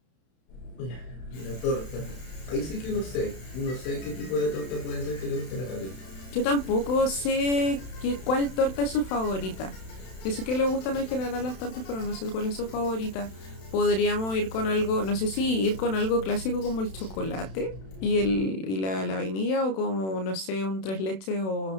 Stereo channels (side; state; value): right; late; 31 ms